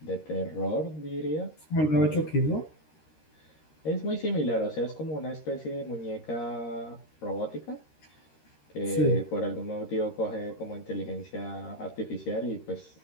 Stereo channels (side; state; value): right; late; 13 ms